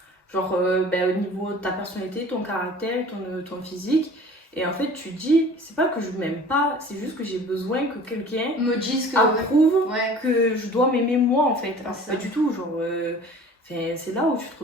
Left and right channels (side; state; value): both; normal; correlation 0.45